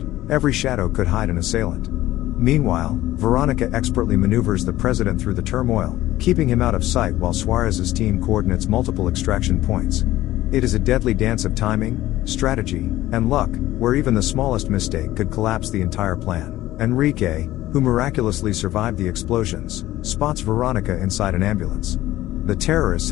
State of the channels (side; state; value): right; quieter; 15.4 dB